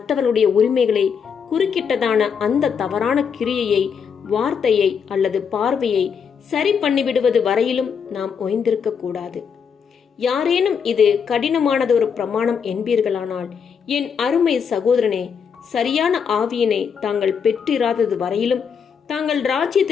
உரிமைகளை குறுக்கிட்டதான அந்த தவறான கிரியையை, வார்த்தையை அல்லது பார்வையை சரி பண்ணிவிடுவது வரையிலும் நாம் ஓய்ந்திருக்க கூடாது. யாரேனும் இது கடினமானதொரு பிரமாணம் என்பீர்களானால், என் அருமை சகோதரனே, சரியான ஆவியினை தாங்கள் பெற்றிராதது வரையிலும் தாங்கள்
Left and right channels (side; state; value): right; quieter; 6.7 dB